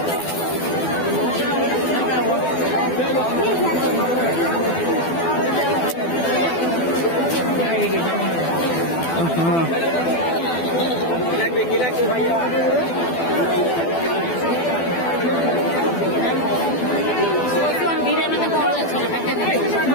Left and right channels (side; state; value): right; late; 12 ms